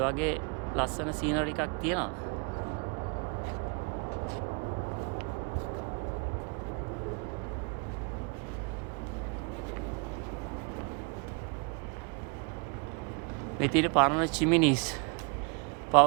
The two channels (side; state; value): left; quieter; 33.8 dB